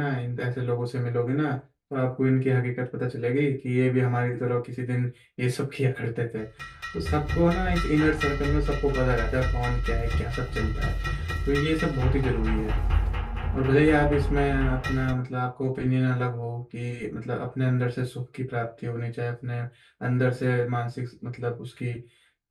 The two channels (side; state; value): both; identical; correlation 1.00